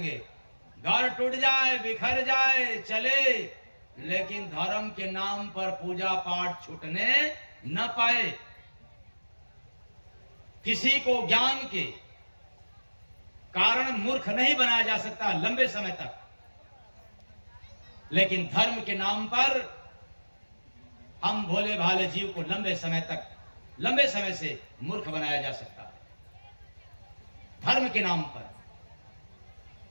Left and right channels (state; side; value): inverted; both; correlation -1.00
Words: घर टूट जाए, बिखर जाए, चले, लेकिन धर्म के नाम पर पूजा पाठ छूटने न पाए। किसी को ज्ञान के कारण मूर्ख नहीं बनाया जा सकता लंबे समय तक, लेकिन धर्म के नाम पर हम भोले भाले जीव को लंबे समय से मूर्ख बनाया जा सकता है, धर्म के नाम पर।